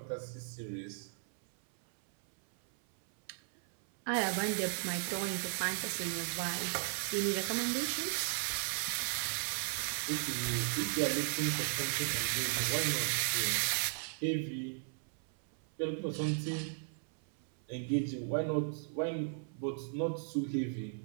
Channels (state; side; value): silent; left; 54 dB below the other